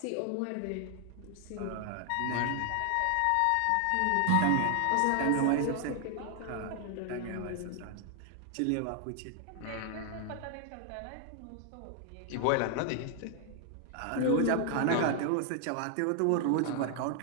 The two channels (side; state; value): both; different; correlation 0.00